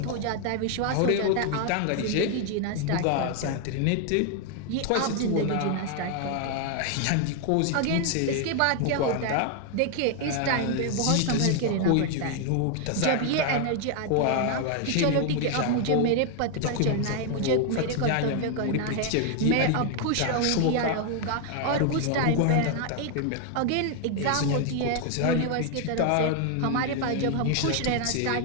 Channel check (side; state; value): both; different; correlation 0.00